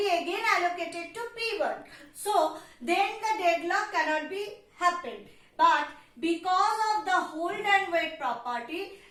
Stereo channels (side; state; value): both; identical; correlation 1.00